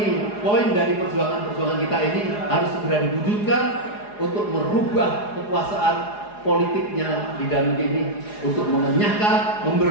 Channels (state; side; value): late; right; 4.8 ms